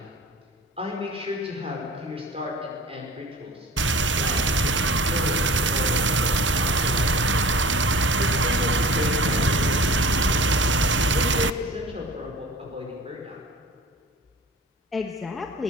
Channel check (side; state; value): both; normal; correlation 0.41